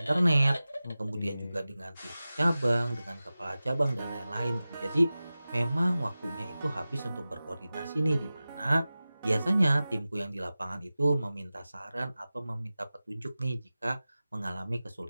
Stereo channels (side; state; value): both; inverted; correlation -0.96